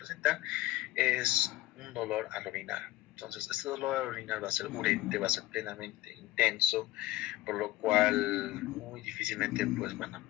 es un dolor al orinar. Entonces, este dolor al orinar va a ser urente, va a ser plenamente intenso, por lo cual muy difícilmente pues, van a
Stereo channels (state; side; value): quieter; right; 17.1 dB